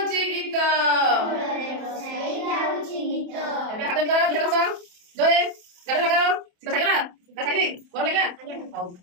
गीत एबे हाथ निकाल दिया कसा जोए गाले लगाओ शीत छाडी ना छाडी गोर लगा हाउ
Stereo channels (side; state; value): left; late; 28 ms